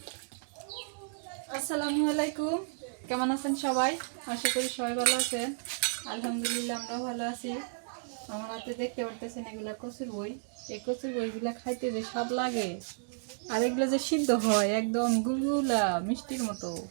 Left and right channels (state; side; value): silent; left; digital silence